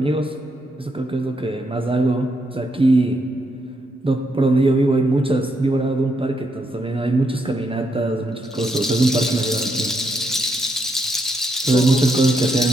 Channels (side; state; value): both; normal; correlation 0.79